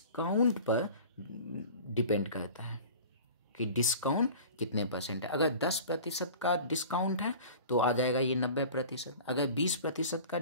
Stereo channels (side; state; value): both; inverted; correlation -0.40